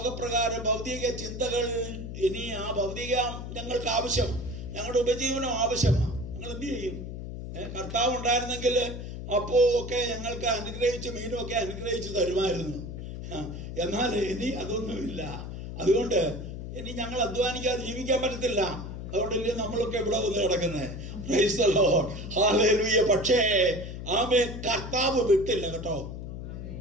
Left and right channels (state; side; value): noise; left; hum, 8 dB below the sound